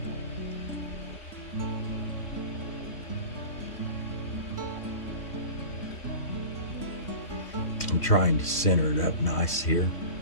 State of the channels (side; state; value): right; late; 3.6 ms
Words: I'm trying to center it up nice here,